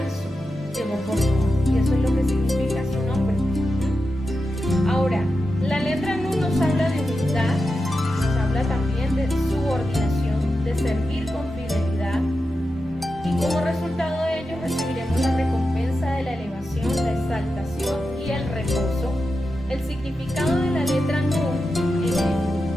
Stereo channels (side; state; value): both; normal; correlation 0.90